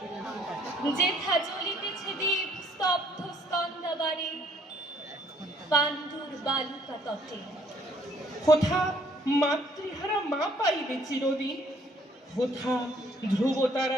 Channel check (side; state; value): both; normal; correlation 0.63